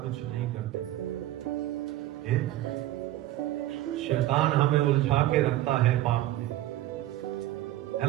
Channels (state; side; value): quieter; left; 14.8 dB